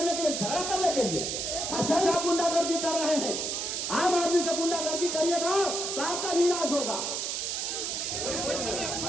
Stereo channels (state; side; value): noise; right; hiss, 2 dB below the sound